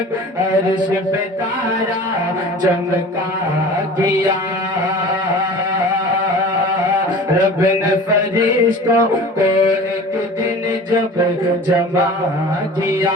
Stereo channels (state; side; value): normal; both; correlation 0.40